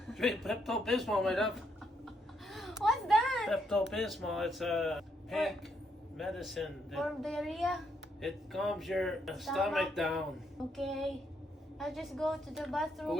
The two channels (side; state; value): both; normal; correlation 0.75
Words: Drink Pepto-Bismol, my love. What's that? Pepto-Bismol, it's a pink medicine. For diarrhea? It calms your stomach down. Okay. I'll just go to the But bathroom.